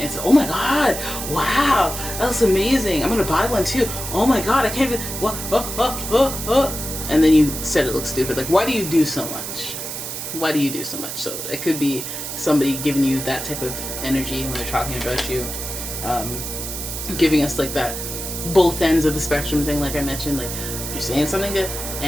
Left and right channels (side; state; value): right; noise; hiss, 6 dB below the sound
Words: said, oh my god, wow, that looks amazing, I'm gonna buy one too, oh my god, I can't even, what, and then you said it looks stupid. Like, why do you do so much? Why do you do so much? So it could be somebody giving you that type of energy when they're talking about you, giving us like that both ends of the spectrum thing, like I mentioned. Like, you're saying something good